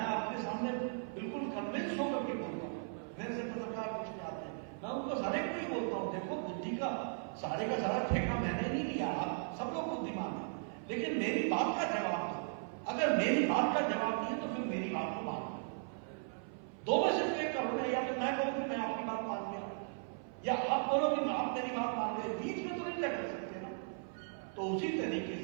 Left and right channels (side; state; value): left; silent; 53 dB below the other